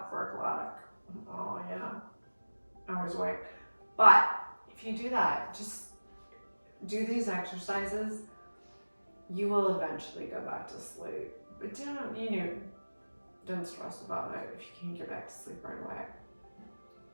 4 o'clock. Oh yeah, I always awake. But if you do that, just do these exercises, you will eventually go back to sleep. But don't stress about it if you can't get back to sleep right away.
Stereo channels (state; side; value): inverted; both; correlation -1.00